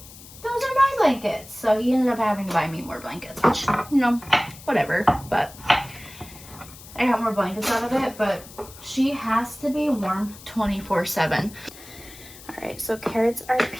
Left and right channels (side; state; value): left; noise; hiss, 18 dB below the sound